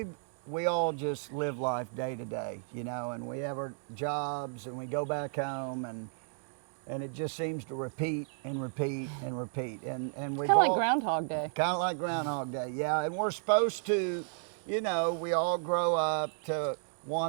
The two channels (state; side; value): silent; left; digital silence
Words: we all just live life day to day, you know, and we have our jobs and we go back home and it just seems to repeat and repeat and repeat. And we've Kind of all like Groundhog Day. kind of like Groundhog Day, yeah. And we're supposed to, you know, we all grow up to